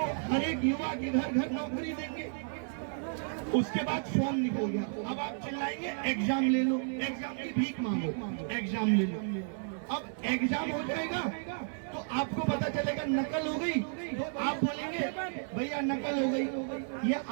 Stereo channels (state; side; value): silent; left; digital silence